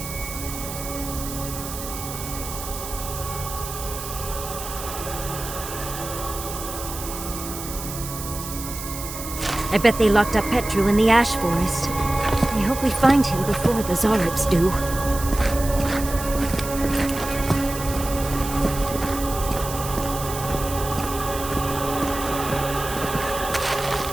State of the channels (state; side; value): noise; right; hiss, 9 dB below the sound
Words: I bet they locked up Petru in the Ash Forest. I hope we find him before the Zoribs do.